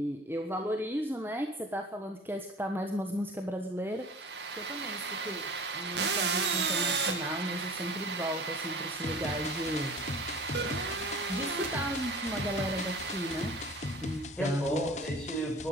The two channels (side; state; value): both; normal; correlation 0.44